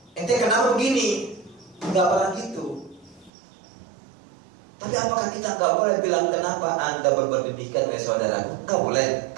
ente kenapa begini? Nggak pernah gitu. Tapi apakah kita nggak boleh bilang kenapa anda berbuat demikian, saudara? Nggak boleh,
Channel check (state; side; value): drops out; left; at 3.3 s